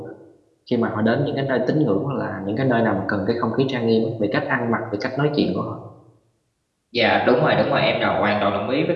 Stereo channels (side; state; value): both; identical; correlation 1.00